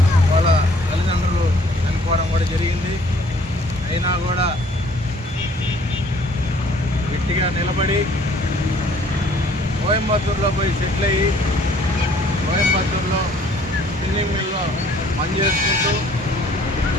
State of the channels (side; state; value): both; normal; correlation 0.58